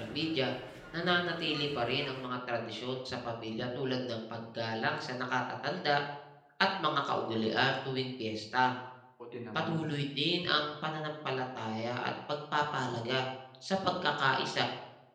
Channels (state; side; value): identical; both; correlation 1.00